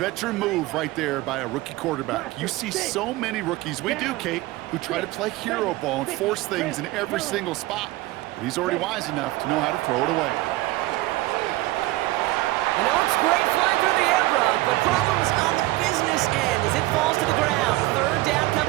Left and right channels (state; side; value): quieter; left; 18.8 dB